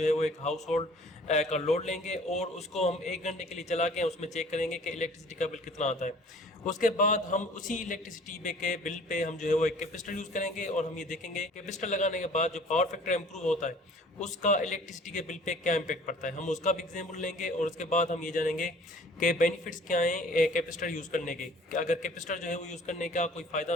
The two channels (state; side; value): normal; both; correlation 0.51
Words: है वो एक हाउस होल्ड का लोड लेंगे और उसको हम 1 घंटे के लिए चला के उसमें चेक करेंगे कि इलेक्ट्रिसिटी का बिल कितना आता है। उसके बाद हम उसी इलेक्ट्रिसिटी के बिल पे हम जो है वो एक कैपेसिटर यूज़ करेंगे और हम ये देखेंगे कैपेसिटर लगाने के बाद जो पावर फैक्टर इंप्रूव होता है उसका इलेक्ट्रिसिटी के बिल पे क्या इम्पैक्ट पड़ता है। हम उसका भी एग्जाम्पल लेंगे और उसके बाद हम ये जानेंगे कि बेनिफिट्स क्या हैं कैपेसिटर यूज़ करने के। अगर कैपेसिटर जो है वो यूज़ करने का कोई